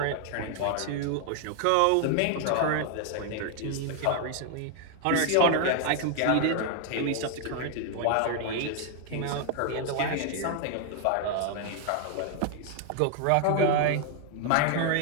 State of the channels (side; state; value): both; different; correlation 0.00